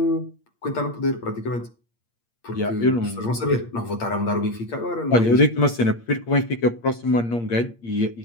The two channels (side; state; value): right; late; 8.6 ms